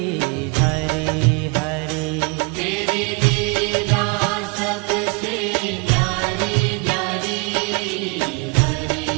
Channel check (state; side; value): quieter; left; 31.2 dB